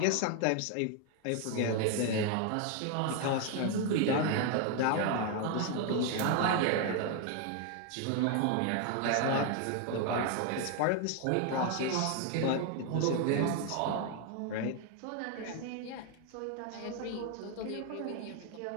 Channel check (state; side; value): different; both; correlation 0.01